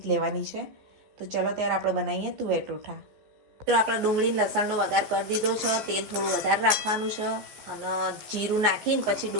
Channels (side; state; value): left; late; 14 ms